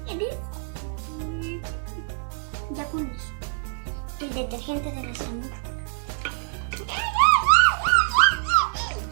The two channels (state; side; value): silent; left; digital silence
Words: Ya con eso. El detergente de nuestra mujer.